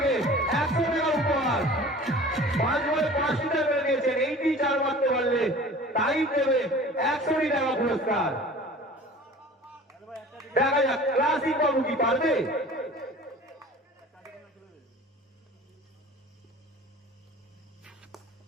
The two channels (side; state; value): both; normal; correlation 0.43